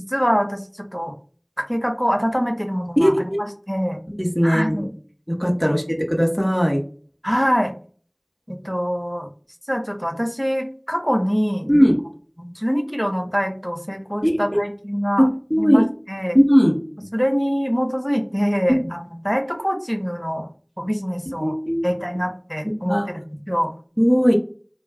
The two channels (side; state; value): both; identical; correlation 1.00